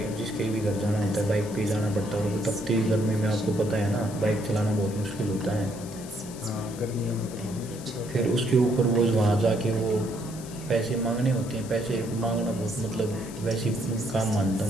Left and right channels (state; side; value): noise; left; hiss, 16 dB below the sound